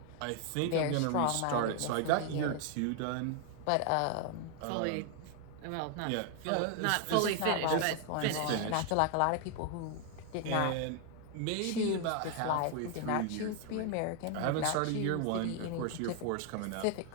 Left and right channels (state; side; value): different; both; correlation 0.00